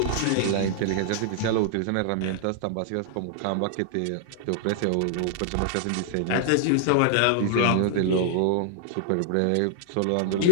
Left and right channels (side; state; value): both; different; correlation 0.00